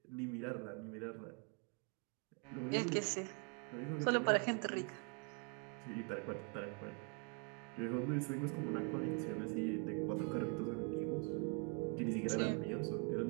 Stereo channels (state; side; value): quieter; left; 35.8 dB